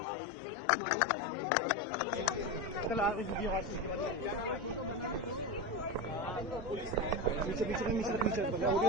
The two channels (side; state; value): both; normal; correlation 0.18